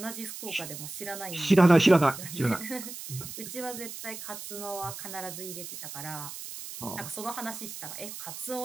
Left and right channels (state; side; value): noise; right; hiss, 10 dB below the sound